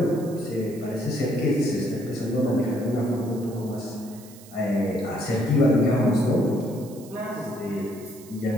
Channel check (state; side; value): noise; right; hiss, 21 dB below the sound